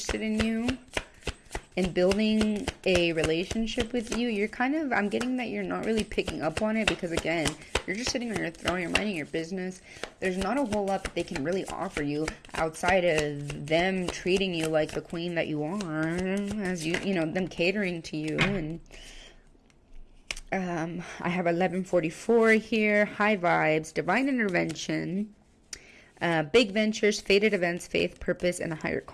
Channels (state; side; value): identical; both; correlation 1.00